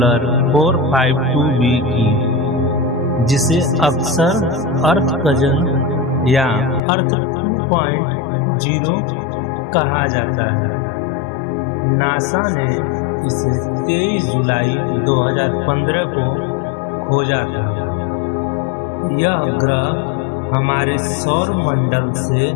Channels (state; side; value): drops out; right; at 6.8 s